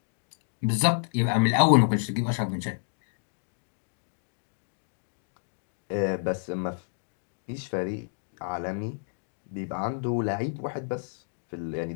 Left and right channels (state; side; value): silent; right; digital silence